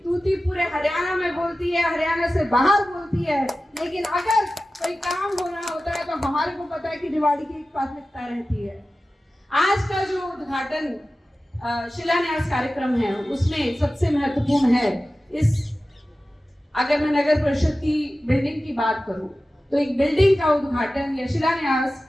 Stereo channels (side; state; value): both; normal; correlation 0.95